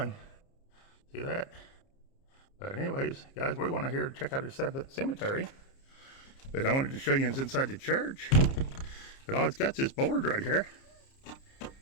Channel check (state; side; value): late; right; 30 ms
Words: See that? But anyways, guys, we want to here check out the cemetery. But I wanted to show you inside the church. But all it's got is this board right here.